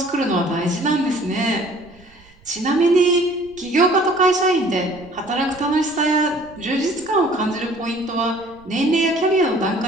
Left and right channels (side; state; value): right; noise; rumble, 27 dB below the sound